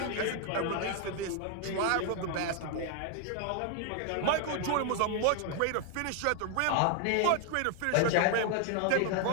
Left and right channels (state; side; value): different; both; correlation 0.00